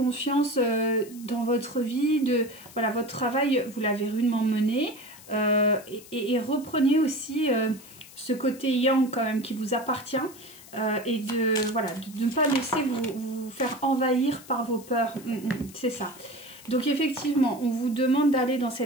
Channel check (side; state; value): left; noise; hiss, 20 dB below the sound